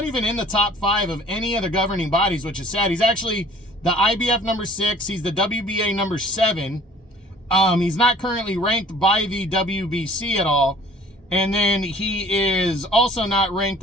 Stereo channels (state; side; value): normal; both; correlation 0.53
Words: even in the top 5 of any of the governing bodies, which is sad. He's actually the IBF number 6. He's the WBA number 7. He's not currently ranked by the WBC at all. And then he is also not ranked